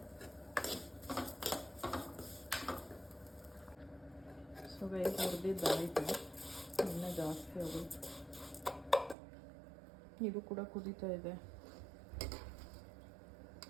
ಸೊ ಗೈಸ್, ಹುರಿದಿದ್ದಾಯಿತು, ಇನ್ನೂ ಜಾಸ್ತಿ ಆಗೋಯ್ತು. ಇದು ಕೂಡ ಕುದೀತಾ ಇದೆ.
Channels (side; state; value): left; drops out; at 9.2 s